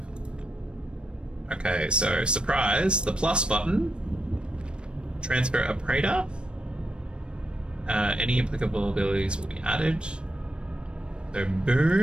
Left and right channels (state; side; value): late; left; 0.055 ms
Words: Okay, so surprise, the plus button. Transfer a praetor. Any applicable abilities will be added. So